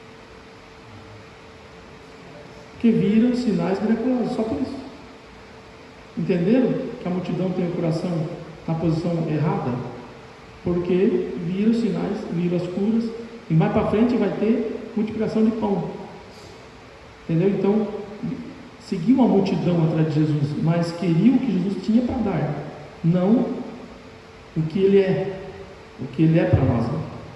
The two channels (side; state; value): both; identical; correlation 1.00